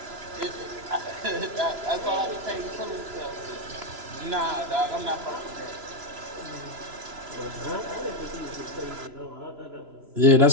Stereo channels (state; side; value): late; left; 3.0 ms